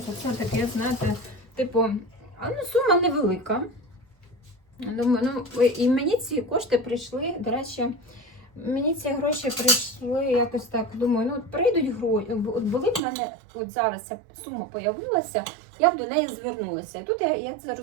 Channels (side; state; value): left; drops out; at 13.0 s